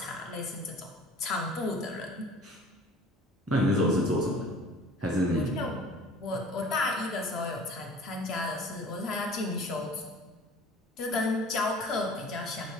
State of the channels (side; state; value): both; normal; correlation 0.46